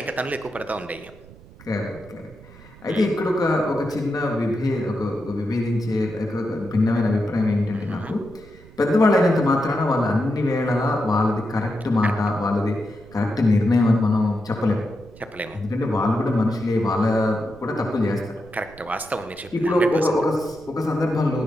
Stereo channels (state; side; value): noise; right; rumble, 22 dB below the sound